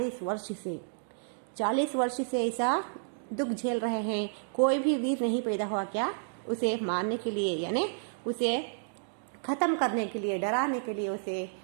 वर्ष से ऐसा दुख झेल रहे हैं, कोई भी वीर नहीं पैदा हुआ क्या उसे मारने के लिए, यानी उसे खत्म करने के लिए, डराने के लिए, उसे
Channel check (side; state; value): left; silent; digital silence